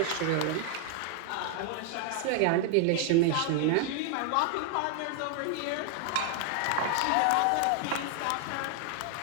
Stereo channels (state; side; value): different; both; correlation 0.00